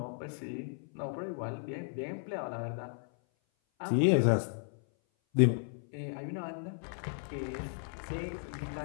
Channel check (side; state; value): right; silent; 55 dB below the other